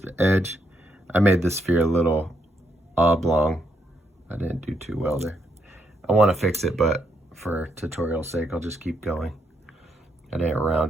edge. I made this sphere a little oblong. I didn't do too well there. I want to fix it, but for tutorial sake, I'll just keep going. I didn't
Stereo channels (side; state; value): both; normal; correlation 0.77